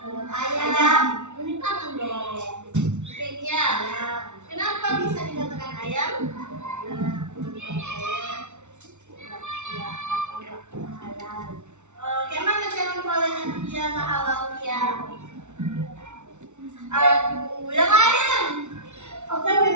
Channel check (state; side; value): late; left; 0.83 ms